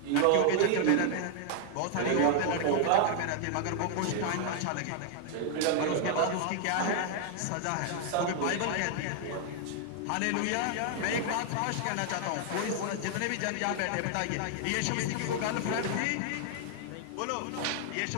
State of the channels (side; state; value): both; different; correlation 0.00